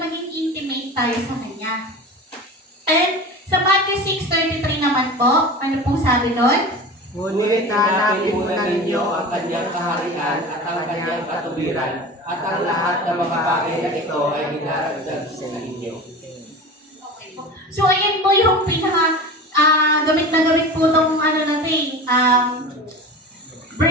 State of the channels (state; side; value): normal; both; correlation 0.33